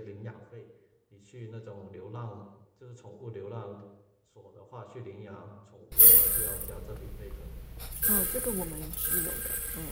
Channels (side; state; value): both; identical; correlation 1.00